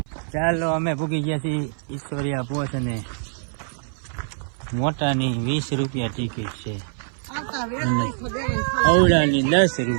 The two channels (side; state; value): left; silent; 57 dB below the other